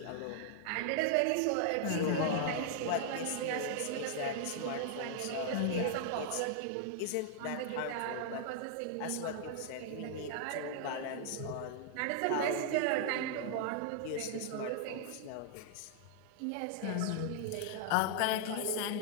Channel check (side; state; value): both; different; correlation -0.01